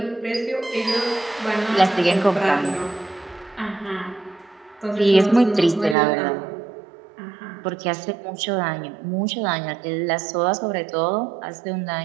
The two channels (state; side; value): drops out; left; at 6.0 s